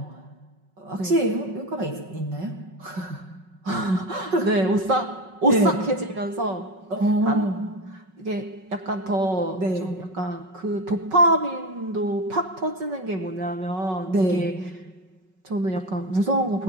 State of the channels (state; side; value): late; left; 5.4 ms